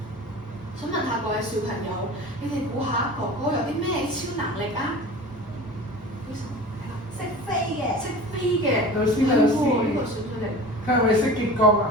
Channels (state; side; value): normal; both; correlation 0.37